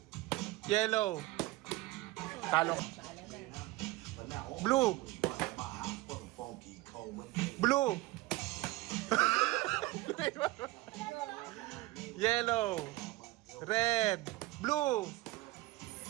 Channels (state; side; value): quieter; left; 19.4 dB